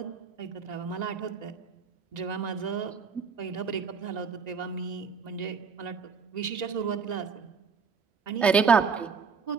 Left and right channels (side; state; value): left; quieter; 5.7 dB